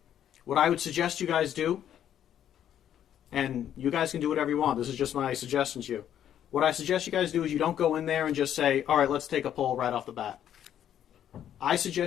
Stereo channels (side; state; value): right; quieter; 10.3 dB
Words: What I would suggest you guys do, and you guys can do whatever you want, this is just my suggestion to you. What I suggest you guys do is you don't go in there and just say, all right, let's take a poll right off the bat. I